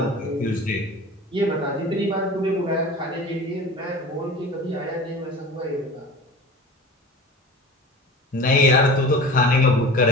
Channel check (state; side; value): normal; both; correlation 0.36